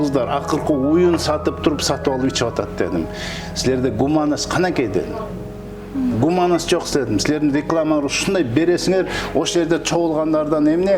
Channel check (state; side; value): identical; both; correlation 1.00